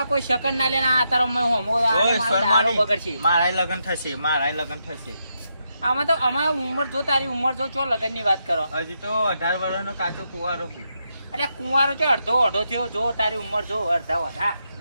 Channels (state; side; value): inverted; both; correlation -0.82